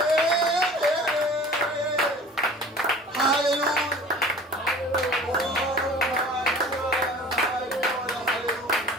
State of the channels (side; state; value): both; normal; correlation 0.43